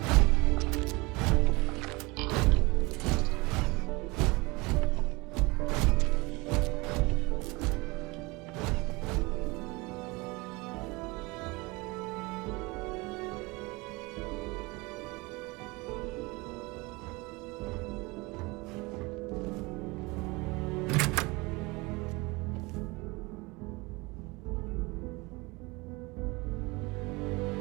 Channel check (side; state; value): left; quieter; 24.5 dB